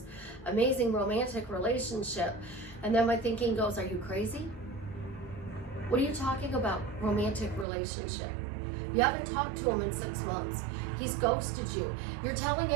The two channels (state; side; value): drops out; left; at 7.7 s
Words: amazing romantic relationship. And then my thinking goes, are you crazy? What are you talking about? Romantic relationship. You haven't talked to him in 6 months. He's ghosted you. You're telling